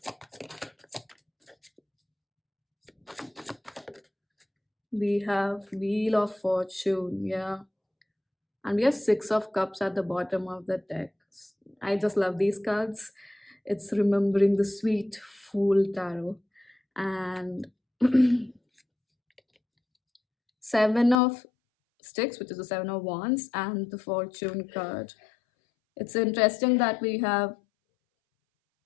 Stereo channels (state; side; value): drops out; right; at 21.2 s